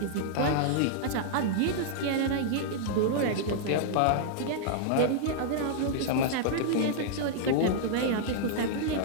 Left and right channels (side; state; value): both; different; correlation -0.01